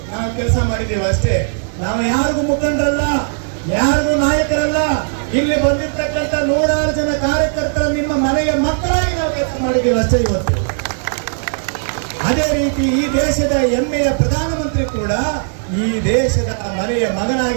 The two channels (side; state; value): left; silent; digital silence